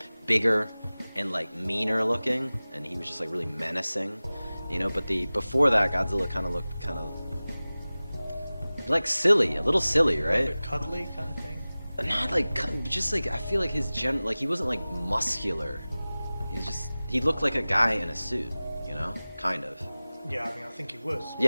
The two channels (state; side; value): inverted; both; correlation -0.98